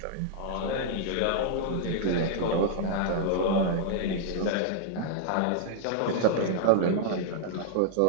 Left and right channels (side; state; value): both; different; correlation -0.01